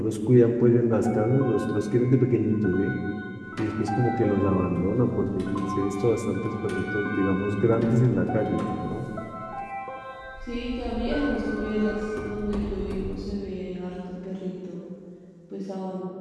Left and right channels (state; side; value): identical; both; correlation 1.00